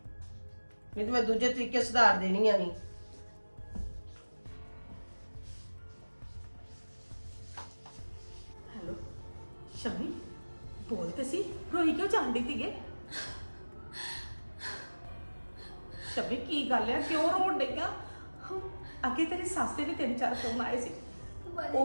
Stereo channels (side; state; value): both; inverted; correlation -1.00